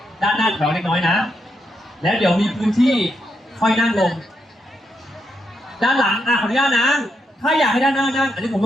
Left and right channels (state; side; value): normal; both; correlation 0.81